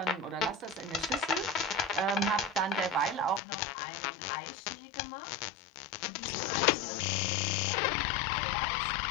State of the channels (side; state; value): right; drops out; at 3.4 s